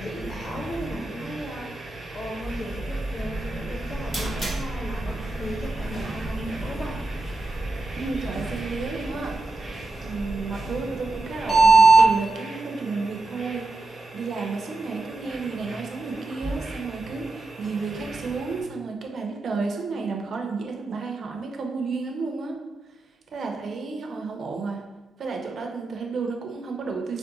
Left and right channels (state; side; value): quieter; left; 3.1 dB